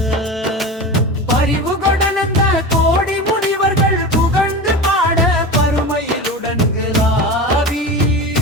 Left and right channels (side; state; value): both; normal; correlation 0.28